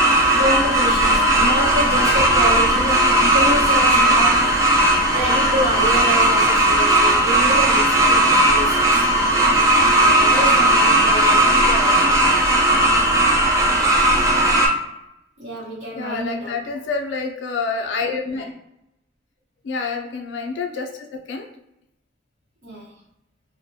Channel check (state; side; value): normal; both; correlation 0.07